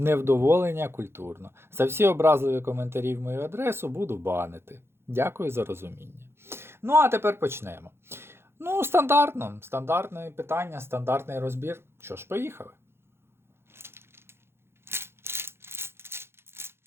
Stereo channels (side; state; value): left; late; 0.12 ms